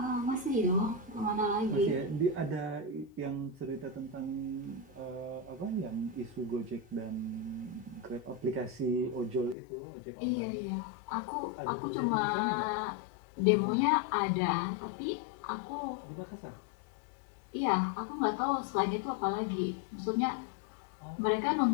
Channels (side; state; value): right; drops out; at 9.6 s